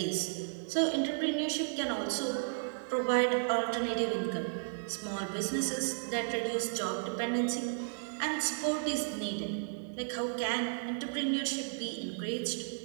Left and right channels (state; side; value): silent; left; digital silence